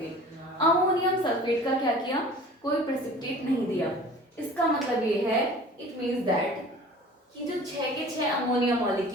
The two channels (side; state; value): both; normal; correlation 0.44